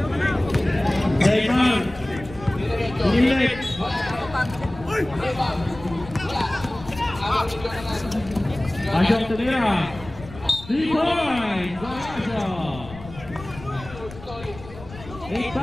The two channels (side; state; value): left; noise; rumble, 16 dB below the sound